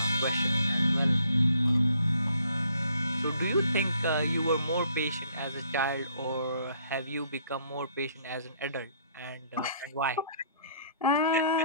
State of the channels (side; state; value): both; inverted; correlation -0.64